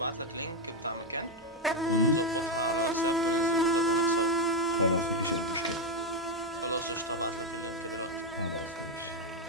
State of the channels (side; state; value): both; normal; correlation 0.04